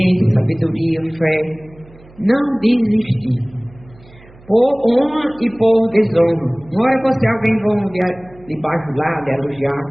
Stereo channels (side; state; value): right; noise; hum, 24 dB below the sound